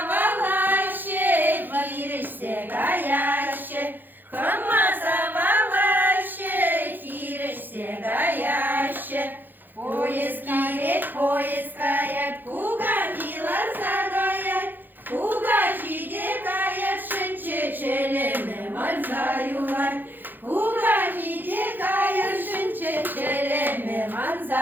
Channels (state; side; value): late; left; 0.090 ms